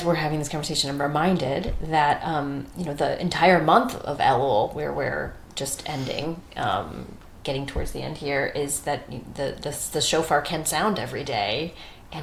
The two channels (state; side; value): identical; both; correlation 1.00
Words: we're having this conversation, I'm reminded that, the entire month of Elul, where we're just ending, getting towards the end here, is that the shofar can sound every day,